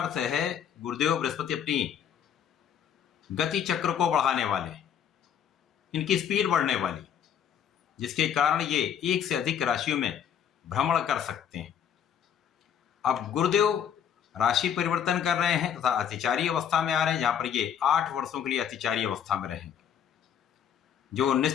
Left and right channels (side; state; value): right; quieter; 8.7 dB